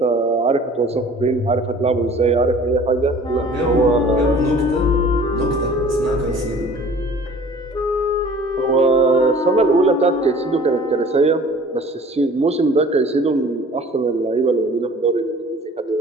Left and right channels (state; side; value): normal; both; correlation 0.48